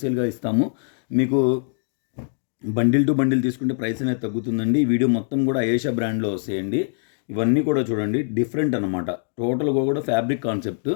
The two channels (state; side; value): silent; right; digital silence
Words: ఇస్తాము. మీకు బండిల్ టు బండిల్ తీసుకుంటే ప్రైస్ అనేది తగ్గుతుందండి. ఈ వీడియో మొత్తం కూడా అయేషా బ్రాండ్లో వస్తాయండి. ఇవన్నీ కూడా చూడండి డిఫరెంట్ అనమాట. టోటల్గా కూడా ఫ్యాబ్రిక్ కాన్సెప్ట్